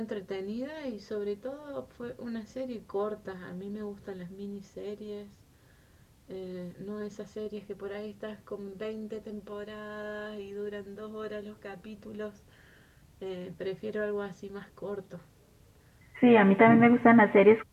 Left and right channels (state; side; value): identical; both; correlation 1.00